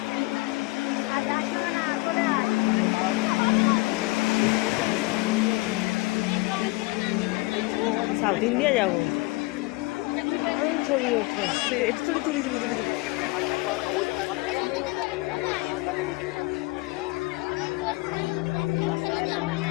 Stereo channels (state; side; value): quieter; right; 23.4 dB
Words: সাউথ ইন্ডিয়া যাবো, ছবি ওঠে, একটু ছবি তুলি দিবি।